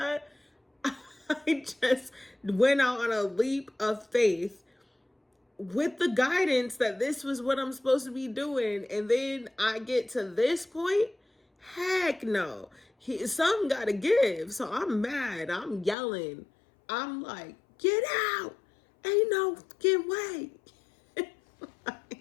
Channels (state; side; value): drops out; right; at 16.0 s